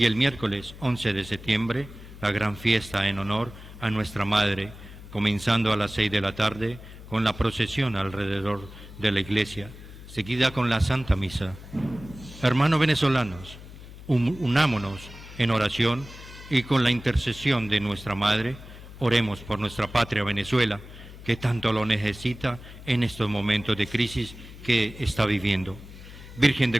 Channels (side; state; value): left; noise; hum, 16 dB below the sound